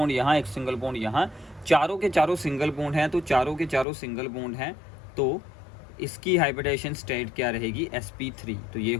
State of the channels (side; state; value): right; drops out; at 3.9 s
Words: यहाँ, एक सिंगल बॉन्ड यहाँ, चारों के चारों सिंगल बॉन्ड हैं, तो चारों के चारों सिंगल बॉन्ड हैं, तो इसकी हाइब्रिडाइजेशन स्टेट क्या रहेगी, sp3। तो ये